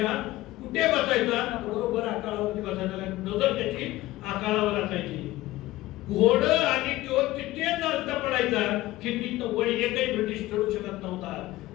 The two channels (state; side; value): quieter; right; 17.2 dB